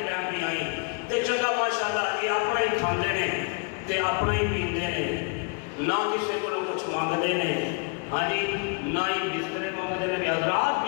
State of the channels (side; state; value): right; quieter; 34.8 dB